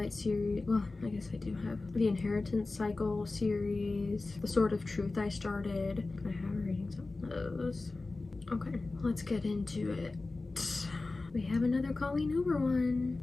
series. Well, I guess I do have the Inheritance Cycle series, The Sword of Truth I started. I have ratings on those. Okay, let's get into it. We have another Colleen Hoover one.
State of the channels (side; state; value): right; quieter; 3.4 dB